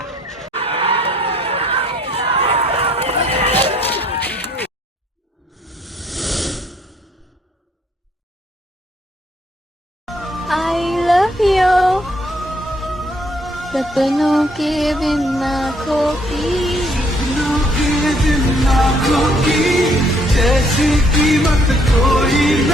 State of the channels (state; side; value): normal; both; correlation 0.66